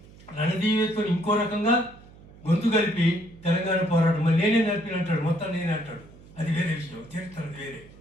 రణదీవేతో ఇంకో రకంగా గొంతు కలిపి తెలంగాణ పోరాటం మళ్ళీ నేనే నడిపినంటాడు, మొత్తం నేనే అంటాడు. అది వేరే విషయం, చరిత్ర వేరే.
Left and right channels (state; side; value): noise; right; hum, 22 dB below the sound